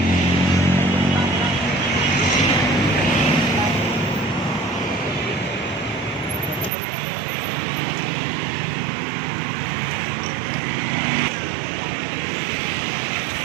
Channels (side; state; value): left; drops out; at 6.7 s